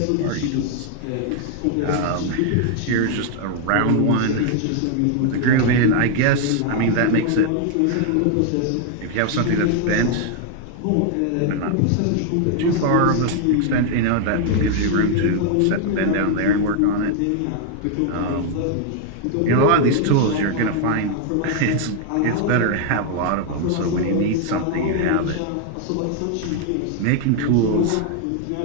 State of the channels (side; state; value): both; different; correlation 0.00